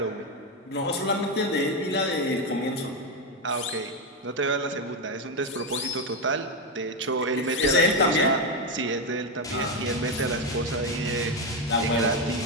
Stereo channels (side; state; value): both; normal; correlation 0.08